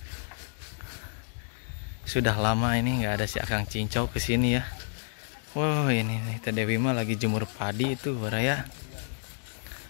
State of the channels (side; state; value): right; silent; digital silence